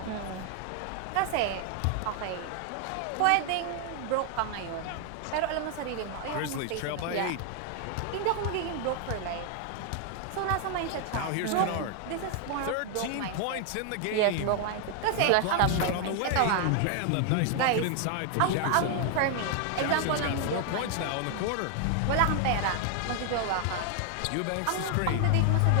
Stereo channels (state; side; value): different; both; correlation 0.00